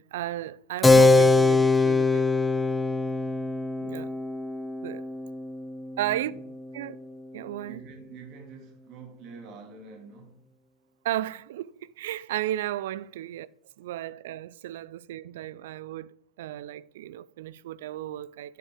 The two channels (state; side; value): normal; both; correlation 0.72